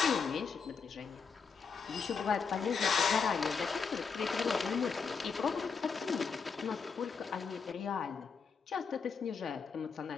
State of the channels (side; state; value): right; quieter; 5.6 dB